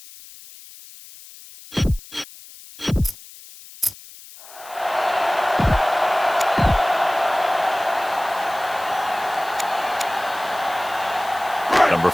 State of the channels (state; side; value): noise; left; hiss, 19 dB below the sound